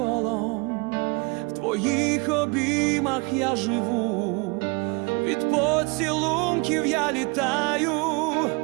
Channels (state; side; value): quieter; left; 29.3 dB